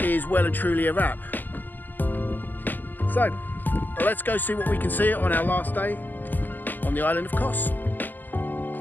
well and truly a wrap. So let's go see what we can see on our last day on the island of Kos.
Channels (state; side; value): late; right; 0.087 ms